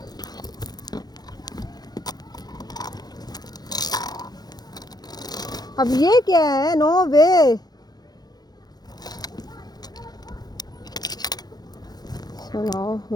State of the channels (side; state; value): right; late; 0.19 ms